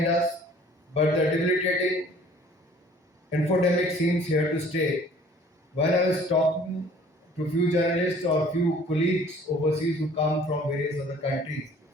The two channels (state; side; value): normal; both; correlation 0.53